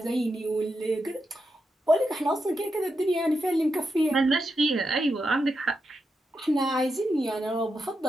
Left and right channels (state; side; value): normal; both; correlation 0.86